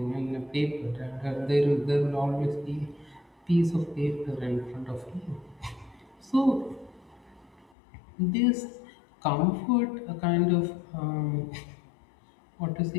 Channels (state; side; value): drops out; right; at 7.7 s